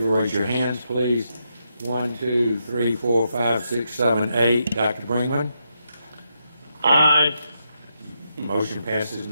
raise your hands, please. 1, 2, 3, 4, 5, 6, 7, 8. Dr. Brinkman? Aye. Motion passes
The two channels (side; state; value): both; inverted; correlation -0.82